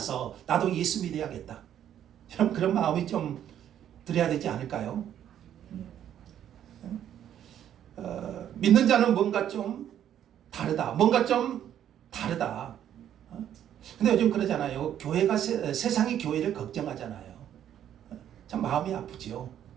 나도 예수 믿어야겠다. 그런 마음이 좀 들어야 되지 않을까요? 믿는 자는 뭔가 좀 다르다. 근데 요즘 그러잖아요. 교회가 세상이 교회를 걱정하잖아요. 참 마음이 아프죠.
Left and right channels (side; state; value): left; quieter; 10.4 dB